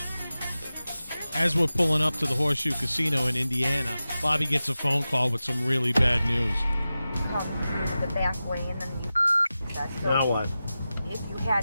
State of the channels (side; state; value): both; inverted; correlation -0.94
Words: As we're pulling up to the Horseshoe Casino in Indiana, Bobby gets a phone call with some really bad news. Comes the back way, and then you so Now what? if you